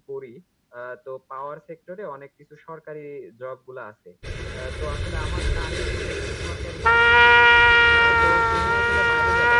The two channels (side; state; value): both; identical; correlation 1.00